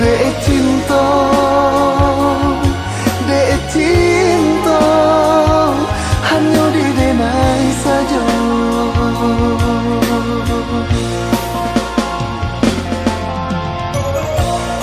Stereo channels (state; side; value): identical; both; correlation 1.00